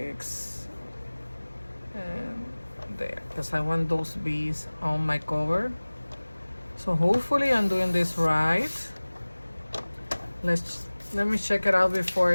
and there, because I want those bees on my cover. So hopefully I'm doing this right. Let me check it out before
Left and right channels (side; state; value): both; inverted; correlation -1.00